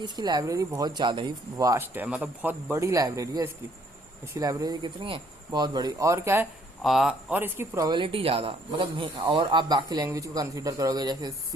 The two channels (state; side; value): normal; both; correlation 0.65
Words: इसकी लाइब्रेरी बहुत ज़्यादा ही वास्ट है, मतलब बहुत बड़ी लाइब्रेरी है इसकी लाइब्रेरी कितनी है, बहुत बड़ी। और क्या है, और इसकी प्रोबेबिलिटी ज़्यादा, मतलब और आप बाकी लैंग्वेज को कंसीडर करोगे जैसे